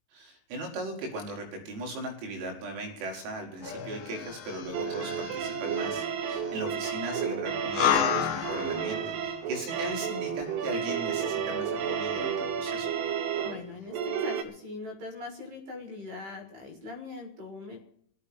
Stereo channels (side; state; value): left; late; 18 ms